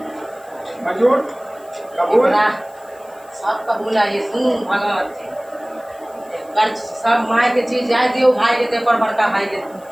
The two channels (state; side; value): noise; left; hiss, 28 dB below the sound